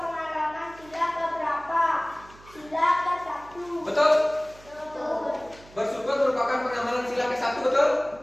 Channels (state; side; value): noise; right; hum, 23 dB below the sound